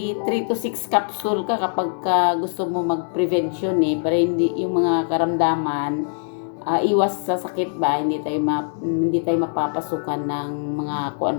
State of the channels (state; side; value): silent; right; digital silence